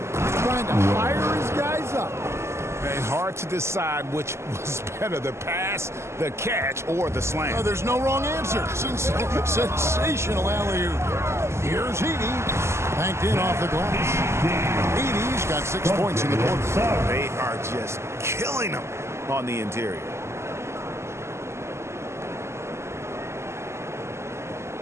trying to fire his guys up. And hard to decide which was better, the pass, the catch, or the slam. Oh, there's no wrong answer. Sensational alley-oop. Here's Edey. Banked in off the glass. Edey's got 6 points in the quarter. They are just killing them on the interior.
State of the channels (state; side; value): late; left; 0.13 ms